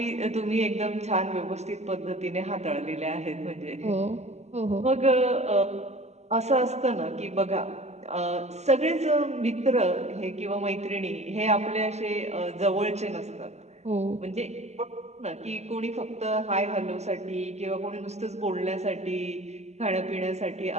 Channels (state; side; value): late; left; 0.32 ms